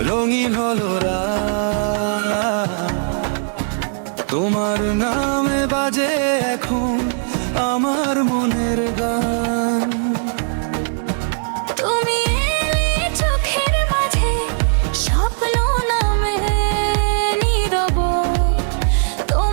রঙিন হলো রাত। তোমার নামে বাজে এখন আমার মনের গান। তুমি এলে চোখের মাঝে স্বপ্ন নামে নীরব,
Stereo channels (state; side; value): silent; left; digital silence